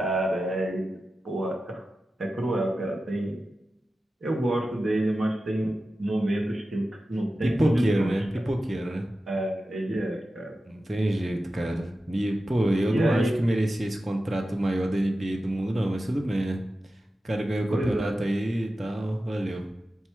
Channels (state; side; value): normal; both; correlation 0.93